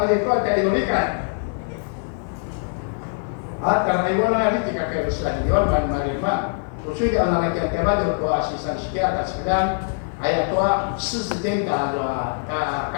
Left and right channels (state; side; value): silent; right; 64 dB below the other